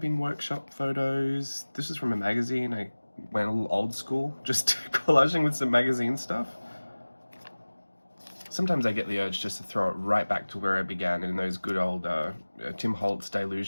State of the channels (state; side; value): inverted; both; correlation -1.00